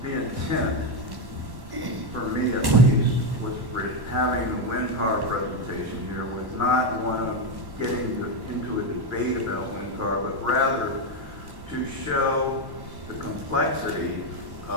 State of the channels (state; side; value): late; left; 1.1 ms